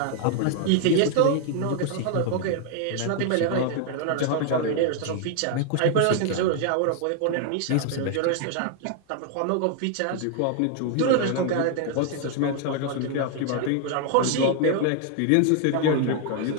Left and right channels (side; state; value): both; different; correlation 0.00